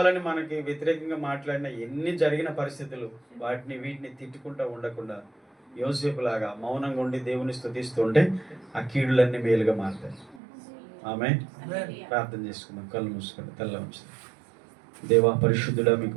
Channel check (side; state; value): left; drops out; at 10.4 s